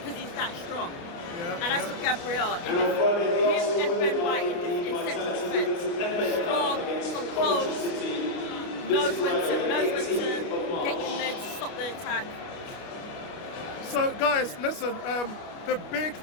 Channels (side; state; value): right; late; 29 ms